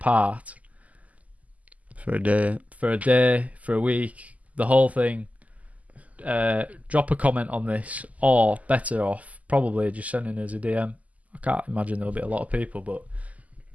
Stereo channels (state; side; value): late; left; 0.074 ms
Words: For a day, for a week, the whole thing, drop a comment on this, or better off, probably just sending us a DM. I can't imagine there'll be a lot of people, but